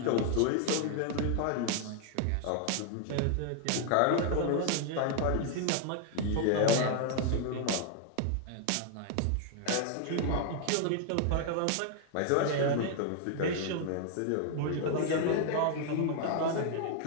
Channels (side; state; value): both; different; correlation 0.00